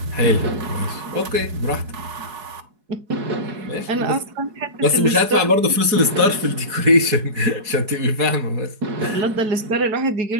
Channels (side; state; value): left; late; 4.7 ms